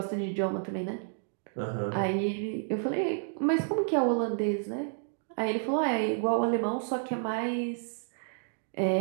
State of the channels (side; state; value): left; silent; digital silence